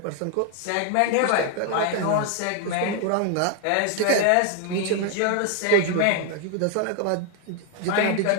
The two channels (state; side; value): different; both; correlation 0.00